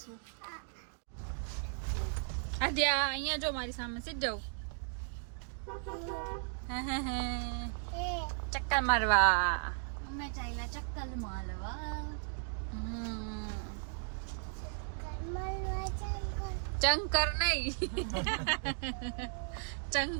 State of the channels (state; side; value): silent; left; digital silence